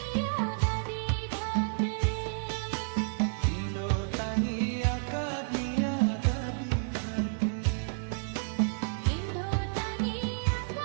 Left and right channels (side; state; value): left; silent; digital silence